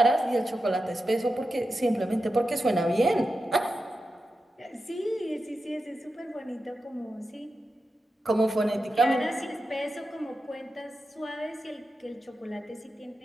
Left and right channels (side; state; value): both; normal; correlation 0.90